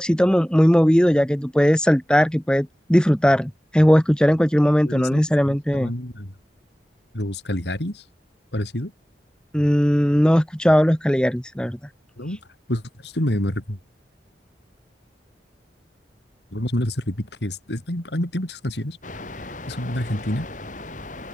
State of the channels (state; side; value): normal; both; correlation 0.96